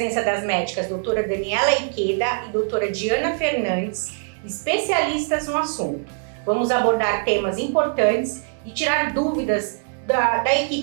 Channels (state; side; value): silent; left; 62 dB below the other